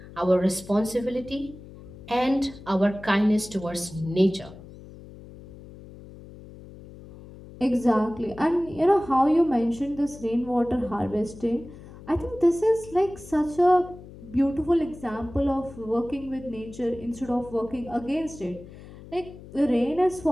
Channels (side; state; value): left; noise; hum, 17 dB below the sound